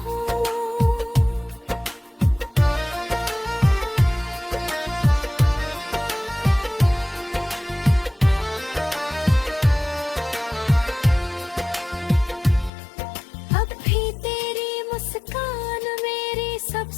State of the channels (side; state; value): right; drops out; at 12.7 s